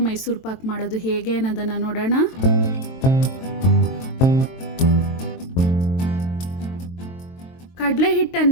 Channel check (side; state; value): right; late; 23 ms